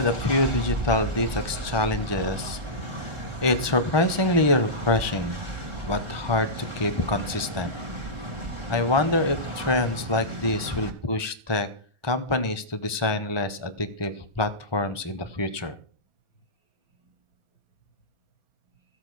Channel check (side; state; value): left; late; 1.4 ms